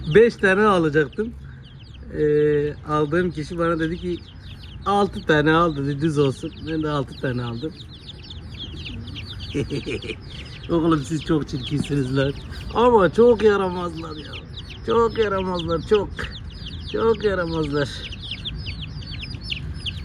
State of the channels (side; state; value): both; identical; correlation 1.00